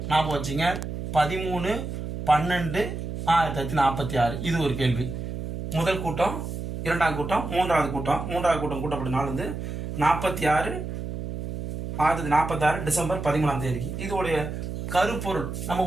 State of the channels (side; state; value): right; noise; hum, 6 dB below the sound